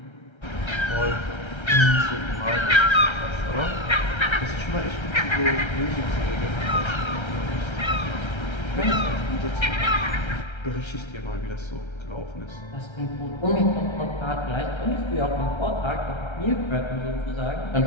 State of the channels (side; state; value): right; late; 1.3 ms